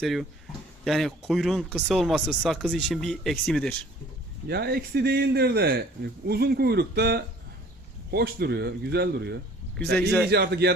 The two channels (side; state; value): both; normal; correlation 0.52